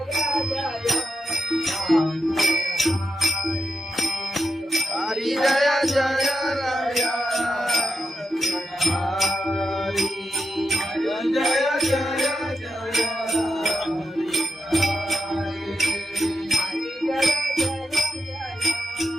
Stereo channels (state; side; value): normal; both; correlation 0.87